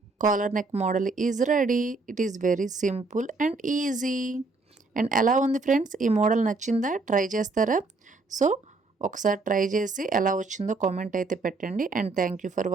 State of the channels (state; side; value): quieter; left; 3.6 dB